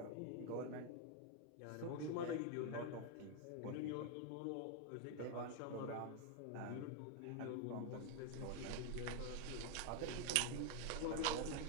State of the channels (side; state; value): both; different; correlation 0.01